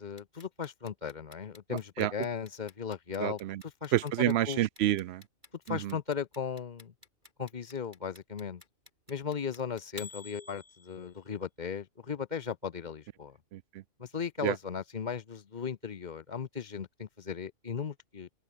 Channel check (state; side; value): late; left; 2.3 ms